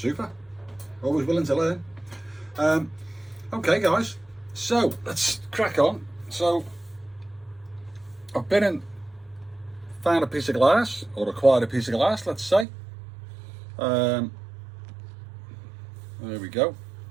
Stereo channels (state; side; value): drops out; left; at 12.7 s